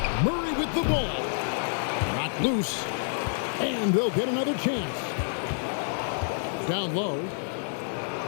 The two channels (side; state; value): right; silent; digital silence